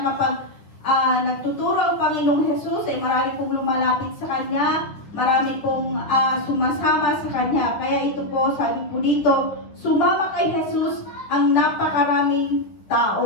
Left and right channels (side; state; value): right; late; 10 ms